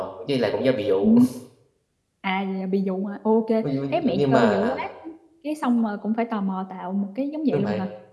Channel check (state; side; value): identical; both; correlation 1.00